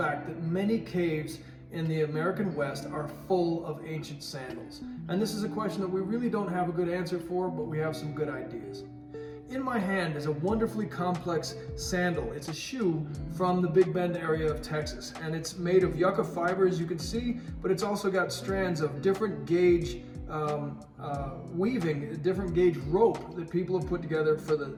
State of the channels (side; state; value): both; identical; correlation 1.00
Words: that many caves in the American West are full of ancient sandals. And this is a question that we really don't have a good answer for, but we have some good ideas. In my hand is a wonderfully complex sandal. It's a shoe from the Big Bend area of Texas, and it's made of yucca fiber, as you can see, but it's also got strands of different gauge weaving, different gauge rope that people have put together for